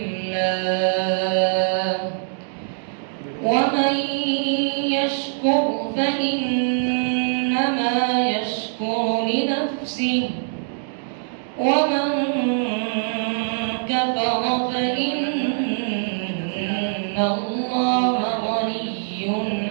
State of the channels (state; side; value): silent; left; digital silence